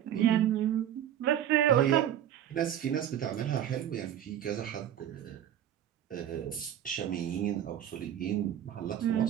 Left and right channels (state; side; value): quieter; left; 10.6 dB